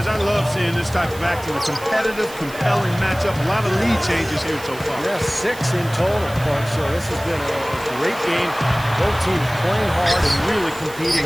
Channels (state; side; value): noise; right; hiss, 17 dB below the sound